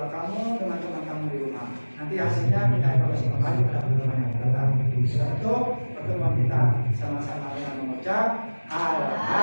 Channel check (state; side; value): inverted; both; correlation -1.00